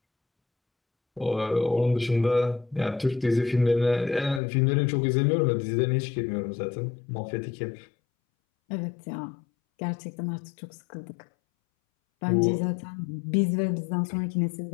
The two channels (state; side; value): drops out; right; at 4.4 s